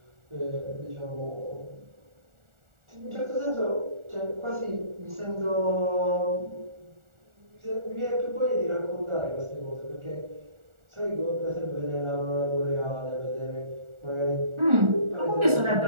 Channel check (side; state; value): left; late; 1.4 ms